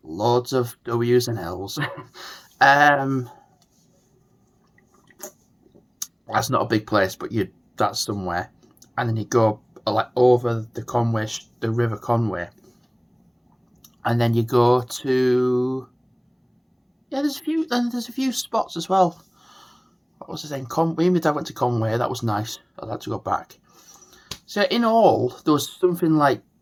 loads of W's and L's. That's not a big place, but that's somewhere. And then you go like over the River Conway, and then you go to there's a few spots as well. What was the name? Me and my dad went to Conway. That was nice. I'd like to go back. So in all, there was something like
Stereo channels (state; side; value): identical; both; correlation 1.00